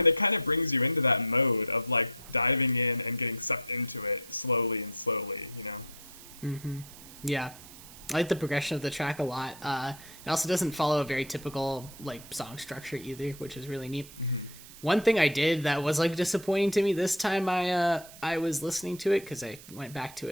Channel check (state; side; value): noise; right; hiss, 18 dB below the sound